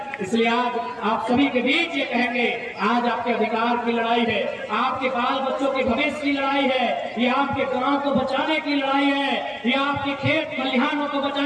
इसलिए आज आप सभी के बीच ये कहेंगे, आज आपके अधिकार की लड़ाई है, आपके बाल बच्चों के भविष्य की लड़ाई है, ये आपके गांव को बचाने की लड़ाई है, ये आपके खेत खलिहानों को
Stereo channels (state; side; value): identical; both; correlation 1.00